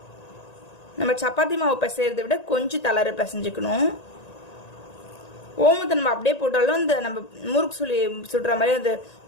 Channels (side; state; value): right; late; 1.9 ms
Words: நம்ம சப்பாத்தி மாவு பிசைறதை விட கொஞ்சம் தளர பிசைஞ்சுக்கணும். ஓமத்தை நம்ம அப்படியே போட்டாலும் இந்த நம்ம முறுக்கு சுடுற மாதிரி அது